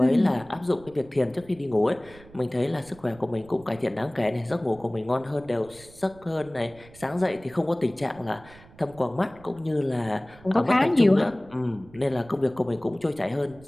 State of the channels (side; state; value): right; noise; rumble, 23 dB below the sound